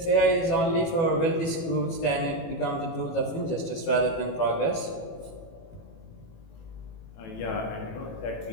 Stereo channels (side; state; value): right; late; 18 ms